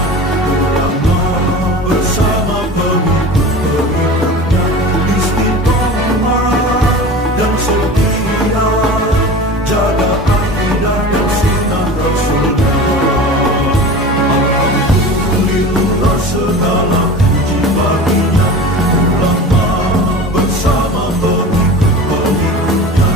ulama bersama pengikut-pengikutnya istiqomah dan setia jaga akidah dan sunnah Rasulullah. Alhamdulillah segala puji baginya ulama bersama pengikut-pengikutnya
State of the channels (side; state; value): both; normal; correlation 0.35